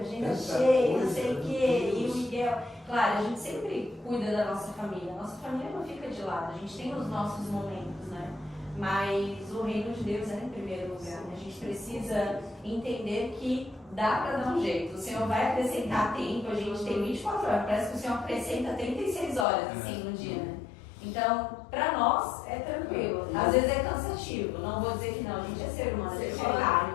cheia, não sei o quê, e o Miguel. Claro, a gente sempre cuida da nossa família. A nossa família não fica de lado, a gente tem os nossos momentos, né? Mas o reino de Deus é em primeiro lugar, né? A gente precisa entender que dá para dar um jeito. O Senhor vai acrescentar tempo, a gente tem 24 horas, parece que o Senhor acrescenta 36 horas, assim, no dia, né? Então, para nós é tranquilo. Às vezes é cansativo. Não vou dizer que não, a gente é ser humano, a gente é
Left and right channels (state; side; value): drops out; right; at 19.5 s